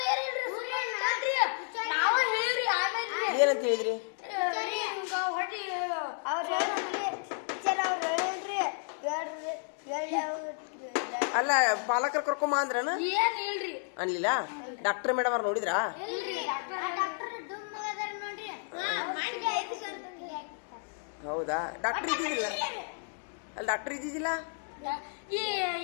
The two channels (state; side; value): silent; right; 57 dB below the other